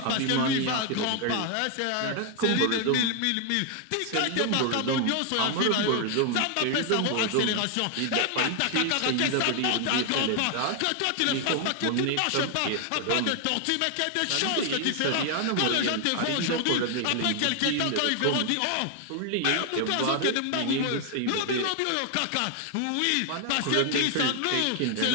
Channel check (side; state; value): both; different; correlation 0.00